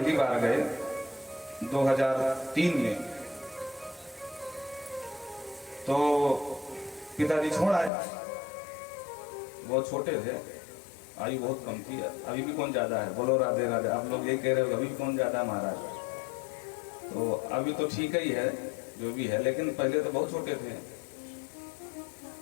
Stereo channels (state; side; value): drops out; right; at 7.9 s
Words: बार गए 2003 में, तो पिताजी छोड़ आए। बहुत छोटे थे, आयु बहुत कम थी। अभी भी कौन ज्यादा है, बोलो राधे राधे। आप लोग यही कह रहे हो अभी भी कौन ज्यादा है महाराज। तो अभी तो ठीक ही है जो भी है, लेकिन पहले तो बहुत छोटे थे।